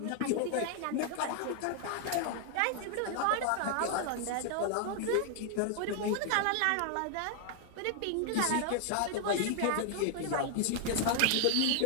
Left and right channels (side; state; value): both; different; correlation 0.00